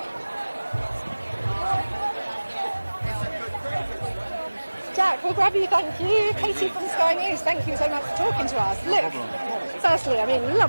Jack, we'll grab you. Thank you. Katie from Sky News. Thank you so much for talking to us. Look, firstly,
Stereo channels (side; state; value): both; inverted; correlation -1.00